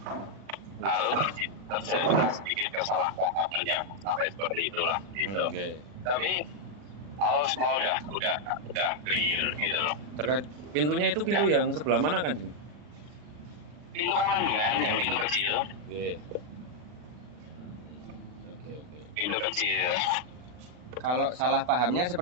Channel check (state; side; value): late; left; 40 ms